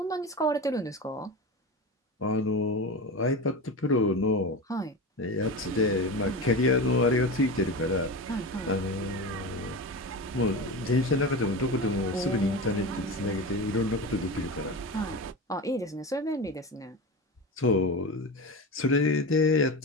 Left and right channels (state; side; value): normal; both; correlation 0.25